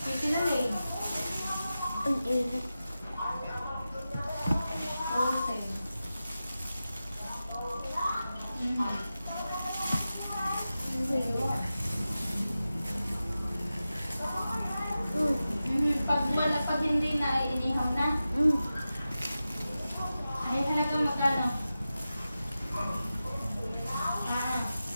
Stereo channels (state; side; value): inverted; both; correlation -0.93